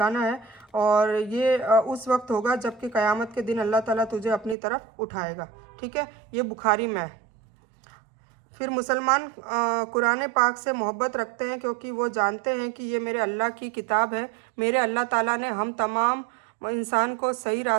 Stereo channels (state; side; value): drops out; left; at 4.5 s